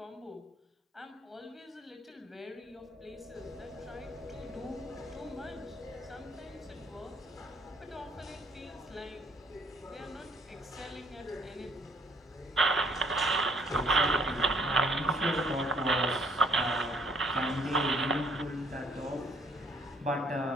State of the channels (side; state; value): both; normal; correlation 0.63